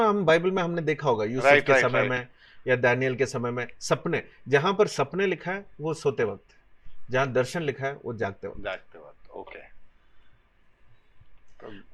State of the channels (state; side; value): identical; both; correlation 1.00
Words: हम बाइबल में हमने देखा होगा, यूसुफ के समय में या दानियल के समय में। सपने, जहां पर सपने लिखा है वो सोते वक्त, जहां दर्शन लिखा है वो जागते वक्त। ओके।